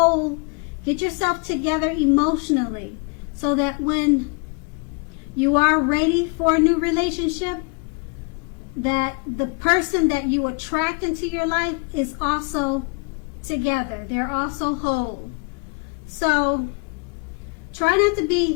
get yourself together emotionally, so that when you are ready for a new relationship, that the person that you attract into your life is also together. They're also whole. So try not to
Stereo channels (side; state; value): right; quieter; 34.9 dB